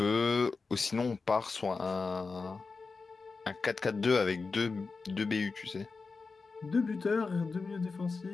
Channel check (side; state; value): right; quieter; 4.3 dB